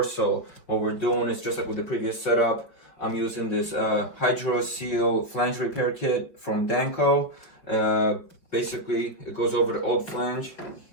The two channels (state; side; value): late; right; 5.2 ms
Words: So what we're doing is just like with the previous setup. I'm using this HydroSeat Flange repair kit from Danco. Basically, it goes over the old flange.